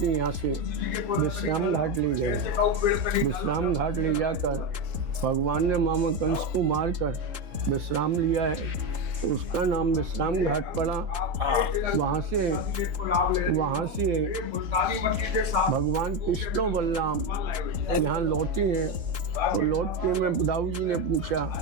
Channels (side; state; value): left; late; 3.8 ms